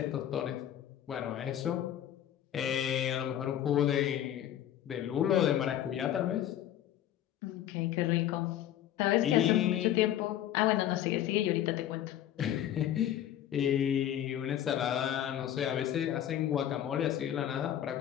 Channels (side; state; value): right; quieter; 11.4 dB